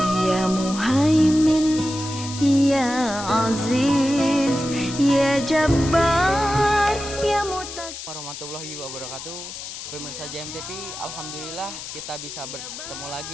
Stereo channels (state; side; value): noise; left; hiss, 10 dB below the sound